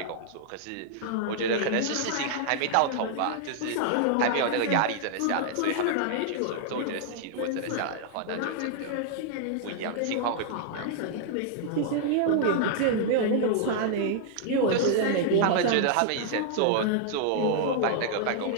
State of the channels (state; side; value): different; both; correlation -0.01